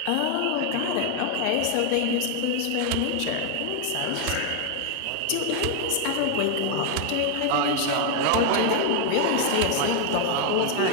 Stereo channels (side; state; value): both; different; correlation 0.00